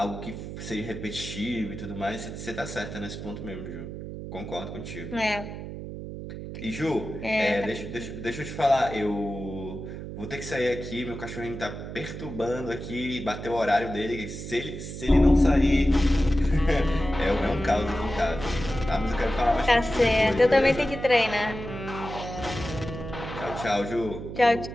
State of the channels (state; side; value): noise; right; hum, 9 dB below the sound